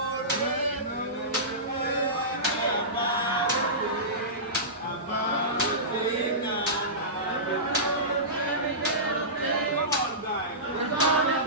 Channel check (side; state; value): both; normal; correlation -0.20